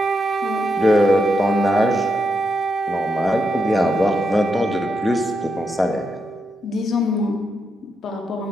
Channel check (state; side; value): normal; both; correlation 0.83